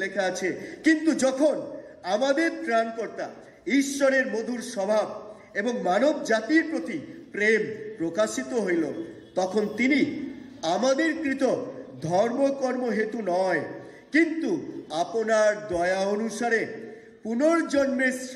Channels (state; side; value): identical; both; correlation 1.00